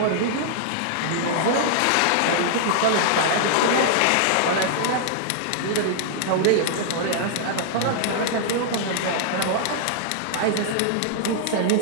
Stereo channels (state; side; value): different; both; correlation -0.01